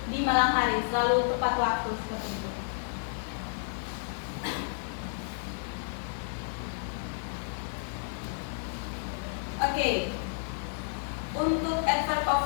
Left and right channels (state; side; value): silent; right; digital silence